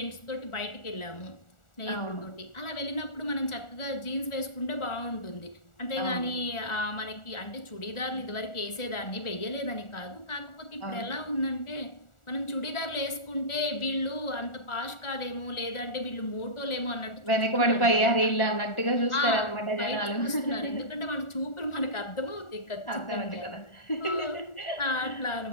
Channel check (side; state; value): right; late; 1.4 ms